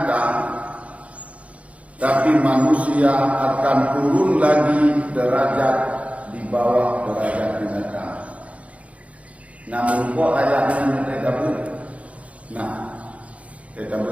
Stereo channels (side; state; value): left; late; 0.065 ms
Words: tapi manusia akan turun lagi derajat di bawah derajat binatang. Namun kok ayatnya kita buat? Nah, kita